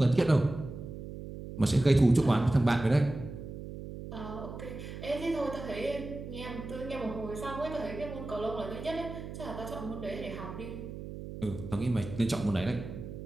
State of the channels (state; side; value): noise; right; hum, 10 dB below the sound